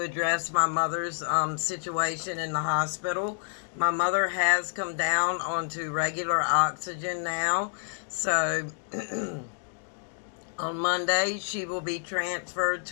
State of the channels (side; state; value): right; silent; digital silence